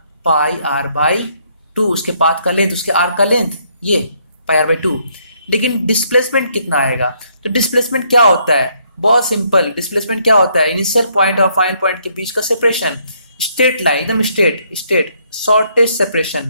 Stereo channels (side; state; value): both; inverted; correlation -0.70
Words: πr/2, उसके पाथ का लेंथ, उसके आर्क का लेंथ, ये πr/2। लेकिन डिस्प्लेसमेंट कितना आएगा? तो डिस्प्लेसमेंट क्या होता है? बहुत सिंपल, डिस्प्लेसमेंट क्या होता है? इनिशियल पॉइंट और फाइनल पॉइंट के बीच का सेपरेशन, स्ट्रेट लाइन, एकदम स्ट्रेट शॉर्टेस्ट